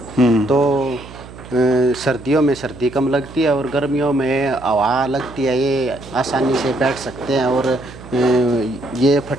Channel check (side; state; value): right; noise; hum, 17 dB below the sound